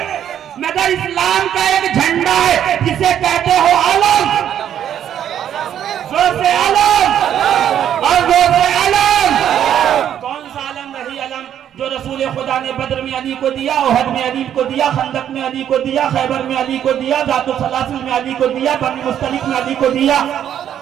मगर इस्लाम का एक झंडा है जिसे कहते हो अलम। जोर से अलम और जोर से अलम। कौन सा अलम? वही अलम जो रसूल खुदा ने बद्र में अली को दिया, ओहद में अली को दिया, खंदक में अली को दिया, खैबर में अली को दिया, जातुल सलासिल में अली को दिया, बनी मुस्तलिक में अली को दिया,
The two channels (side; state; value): left; quieter; 10.0 dB